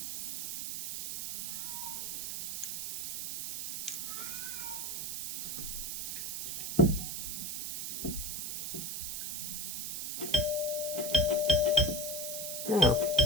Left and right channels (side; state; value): right; noise; hiss, 3 dB below the sound